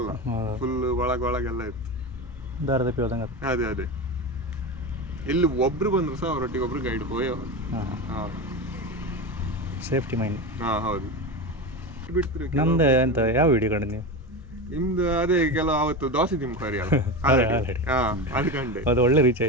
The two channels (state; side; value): normal; both; correlation 0.21